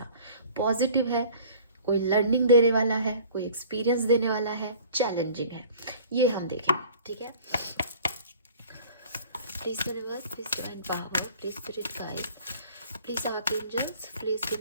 पॉजिटिव है, कोई लर्निंग देने वाला है, कोई एक्सपीरियंस देने वाला है, चैलेंजिंग है, ये हम देखेंगे। ठीक है, please universe, please divine power, please spirit guide, please archangels, please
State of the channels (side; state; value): both; inverted; correlation -0.48